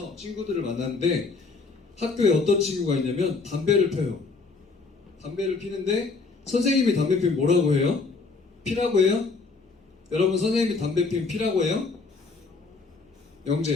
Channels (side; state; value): right; quieter; 4.2 dB